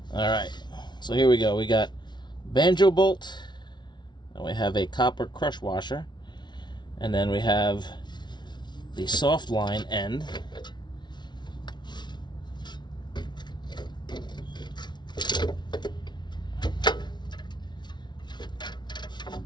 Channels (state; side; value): late; right; 0.21 ms